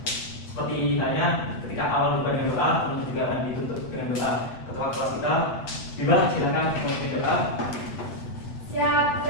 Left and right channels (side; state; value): right; late; 7.9 ms